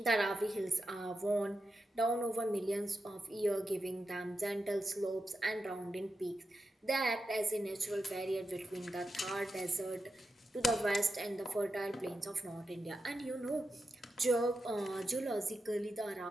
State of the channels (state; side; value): normal; both; correlation 0.88